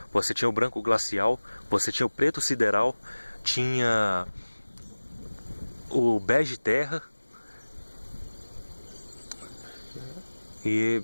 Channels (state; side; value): inverted; both; correlation -1.00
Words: Você tinha o branco glacial. Você tinha o preto sideral. Tinha o bege terra. E,